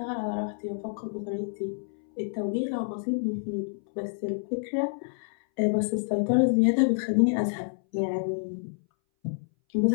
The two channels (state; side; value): silent; right; 59 dB below the other